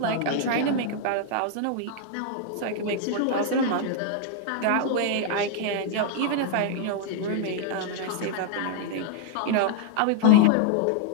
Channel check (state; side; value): different; both; correlation 0.00